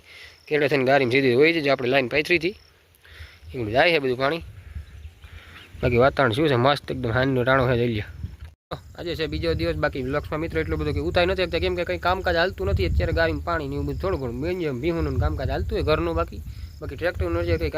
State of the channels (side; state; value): both; identical; correlation 1.00